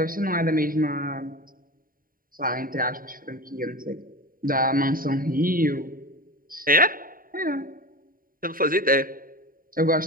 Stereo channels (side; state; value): left; late; 0.41 ms